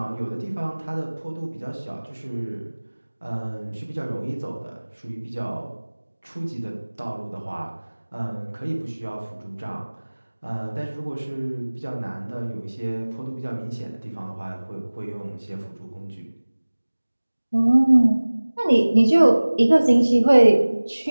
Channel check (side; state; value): both; inverted; correlation -1.00